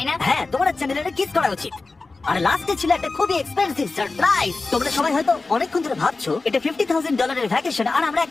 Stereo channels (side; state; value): right; quieter; 3.7 dB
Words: না? হ্যাঁ, তোমার চ্যানেলে কিস করা উচিত। আর লাস্টে ছিল একটা খুবই এক্সপেন্সিভ সারপ্রাইজ। তোমরা সবাই হয়তো অনেকক্ষণ ধরে ভাবছো এটা $50,000 এর ভ্যাকেশন, আর আমরা